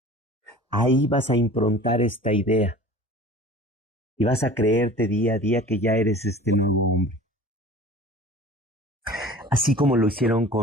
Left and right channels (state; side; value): normal; both; correlation 0.42